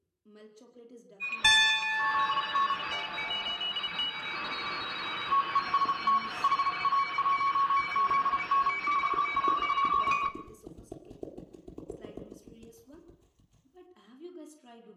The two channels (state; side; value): identical; both; correlation 1.00